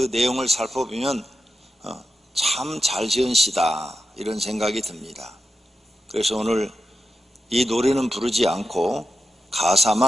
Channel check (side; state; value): both; normal; correlation 0.90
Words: 내용을 살펴보면 참 잘 지은 시다 이런 생각이 듭니다. 그래서 오늘 이 노래는 부르지 않고